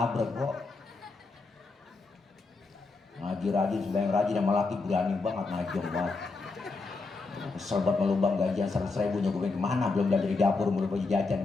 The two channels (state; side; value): quieter; right; 3.9 dB